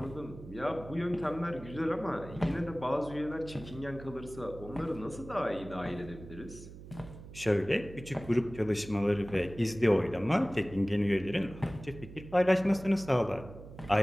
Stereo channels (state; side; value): noise; right; hum, 15 dB below the sound